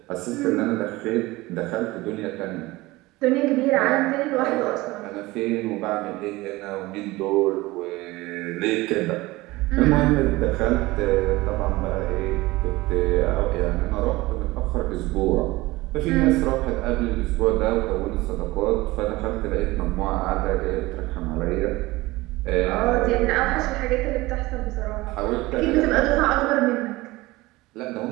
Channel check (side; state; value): left; quieter; 20.1 dB